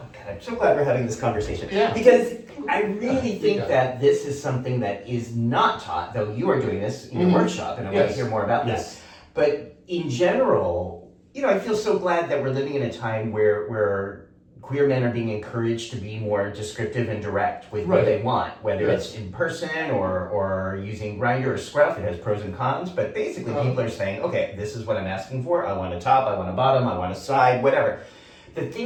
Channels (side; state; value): both; identical; correlation 1.00